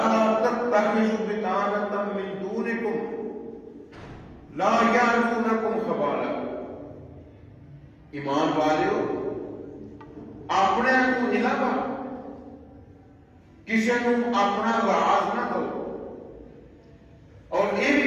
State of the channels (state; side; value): identical; both; correlation 1.00